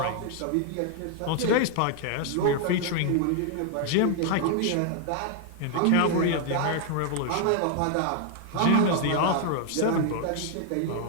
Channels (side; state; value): both; different; correlation 0.00